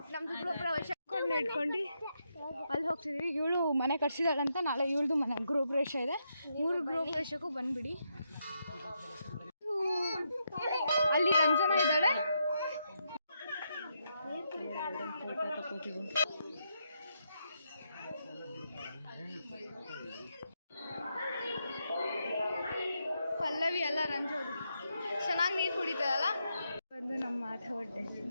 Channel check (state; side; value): inverted; both; correlation -0.81